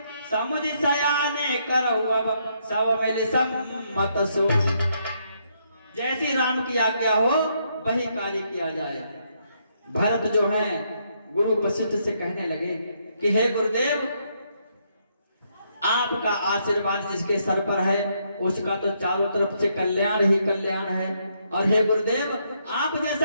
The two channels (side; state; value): both; inverted; correlation -0.74